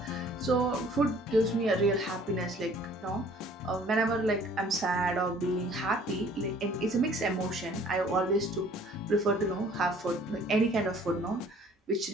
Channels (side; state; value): both; normal; correlation 0.54